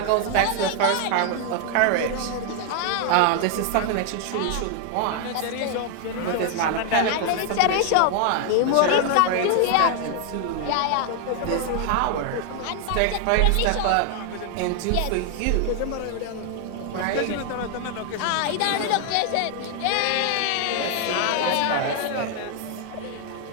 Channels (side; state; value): both; different; correlation 0.00